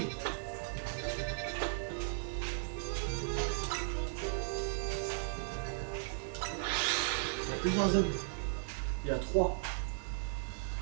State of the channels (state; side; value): silent; left; digital silence